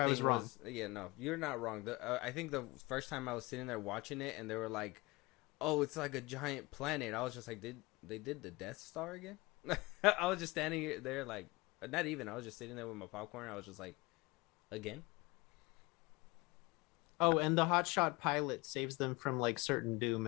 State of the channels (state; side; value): quieter; right; 23.4 dB